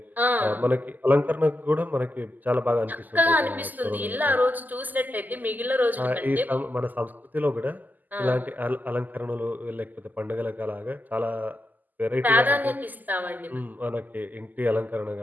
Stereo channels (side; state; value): left; late; 0.084 ms